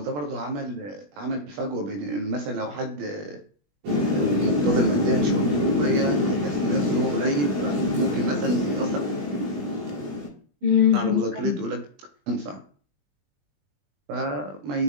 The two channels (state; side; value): late; left; 20 ms